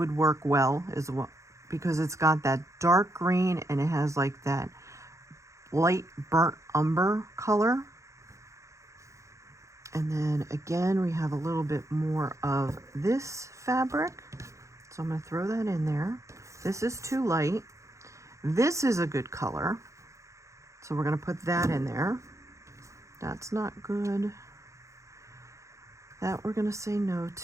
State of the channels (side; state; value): left; late; 0.15 ms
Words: work well as well because it's got that dark green and it has like that light burnt umber color. And then again, we have a little bit more of this fabric. So I'm going to throw that in there. This is too light. This is a good color. So we're going to put that in there. That's not good. That we're going to say no